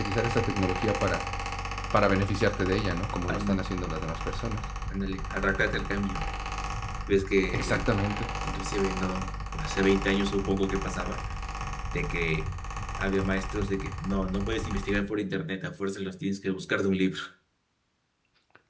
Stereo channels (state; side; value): identical; both; correlation 1.00